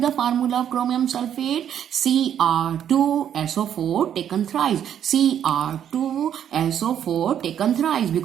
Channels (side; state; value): left; quieter; 9.5 dB